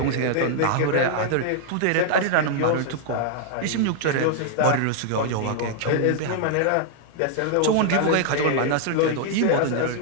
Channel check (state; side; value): different; both; correlation 0.00